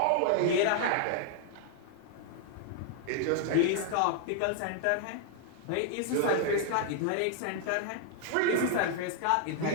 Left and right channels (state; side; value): different; both; correlation 0.00